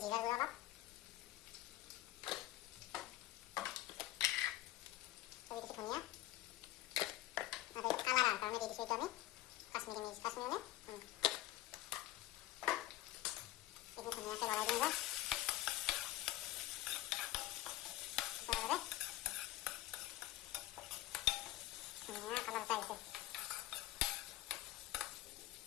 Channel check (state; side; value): quieter; right; 15.8 dB